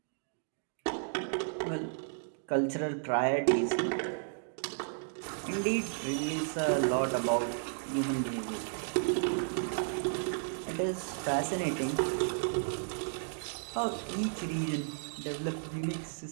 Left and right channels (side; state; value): left; silent; digital silence